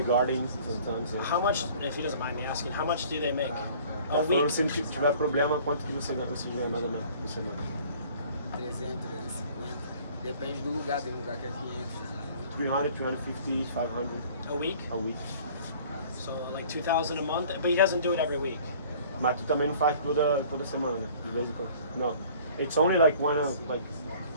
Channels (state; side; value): inverted; both; correlation -0.51